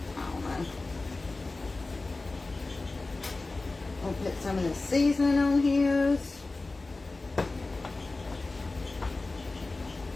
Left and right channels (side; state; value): right; quieter; 3.4 dB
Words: I don't know. I'll put some of the seasoning on his.